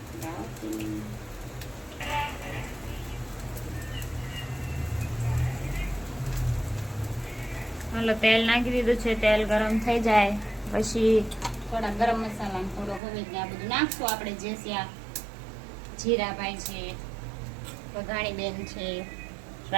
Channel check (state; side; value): drops out; left; at 13.0 s